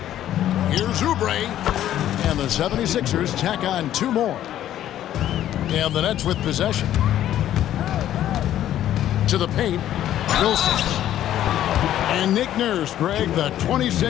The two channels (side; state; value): right; quieter; 12.0 dB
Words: here's Oubre. And the 76ers tack on two more. And the Nets with possession. To the paint, Wilson. And Nick Nurse, Greg, the